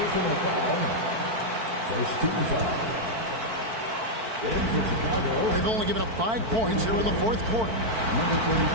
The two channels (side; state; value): left; late; 4.5 ms